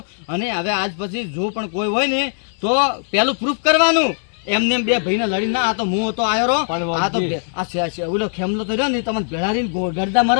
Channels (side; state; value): right; silent; digital silence